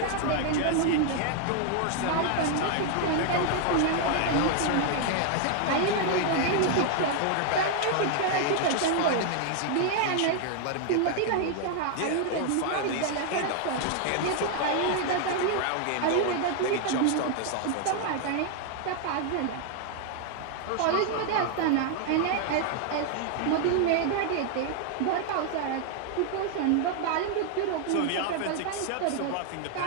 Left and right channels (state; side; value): different; both; correlation 0.00